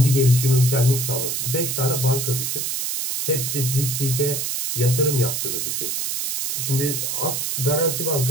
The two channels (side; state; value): right; noise; hiss, 2 dB below the sound